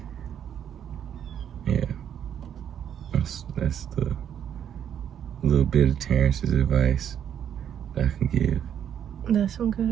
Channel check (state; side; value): quieter; left; 9.2 dB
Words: Yeah. That's the little bit of Terrance's advice that I can give. That's some good